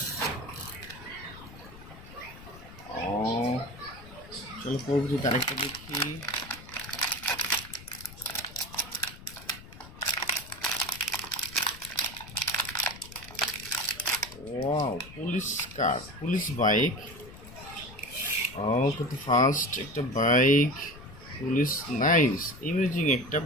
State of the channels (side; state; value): left; noise; rumble, 17 dB below the sound